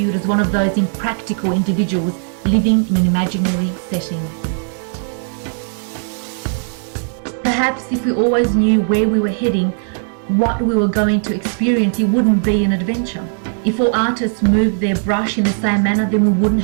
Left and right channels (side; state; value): left; silent; digital silence